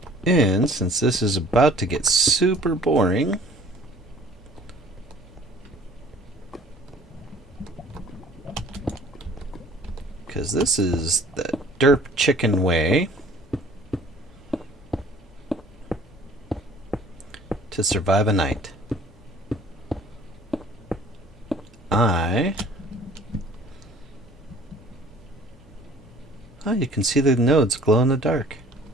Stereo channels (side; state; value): both; normal; correlation 0.52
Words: And since this is about to get super boring, because this is the derp chicken way to survive a night. Oh, you can see the nodes glow in the dark.